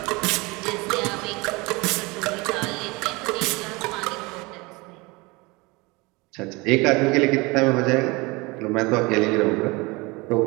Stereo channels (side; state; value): left; quieter; 24.8 dB